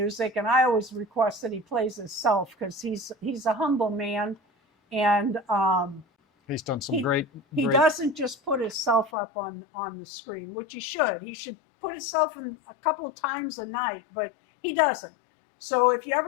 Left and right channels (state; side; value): drops out; right; at 9.1 s